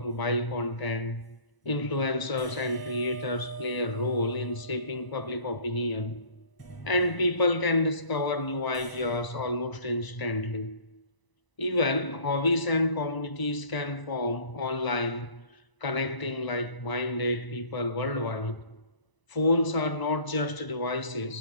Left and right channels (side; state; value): right; late; 1.0 ms